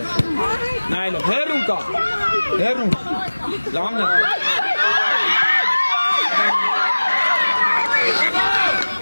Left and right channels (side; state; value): both; inverted; correlation -1.00